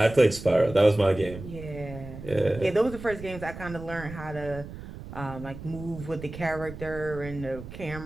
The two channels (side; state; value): right; noise; rumble, 12 dB below the sound